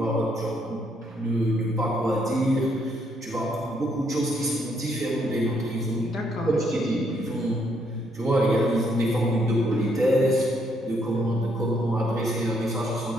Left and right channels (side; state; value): both; normal; correlation 0.72